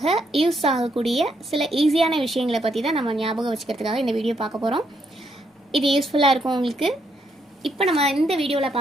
யூஸ் ஆகக்கூடிய சில ஈஸியான விஷயங்களை பற்றி தான் நம்ம ஞாபகம் வச்சுக்கிறதுக்காக இந்த வீடியோ பார்க்க போகிறோம். இது யூஸ்ஃபுல்லாக இருக்கும் உங்களுக்கு. இப்போ நம்ம இந்த வீடியோவில்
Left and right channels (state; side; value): normal; both; correlation 0.76